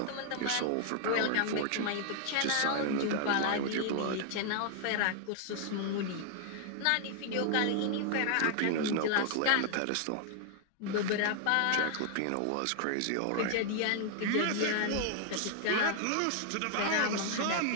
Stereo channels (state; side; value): different; both; correlation 0.00